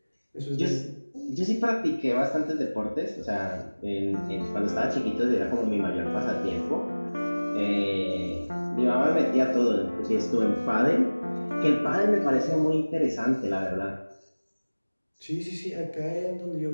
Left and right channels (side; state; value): both; inverted; correlation -1.00